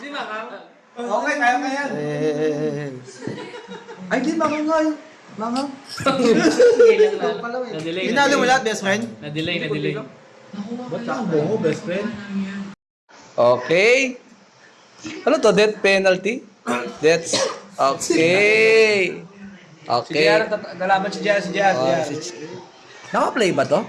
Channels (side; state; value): both; identical; correlation 1.00